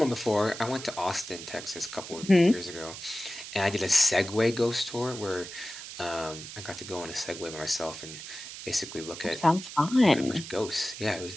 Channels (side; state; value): right; noise; hiss, 11 dB below the sound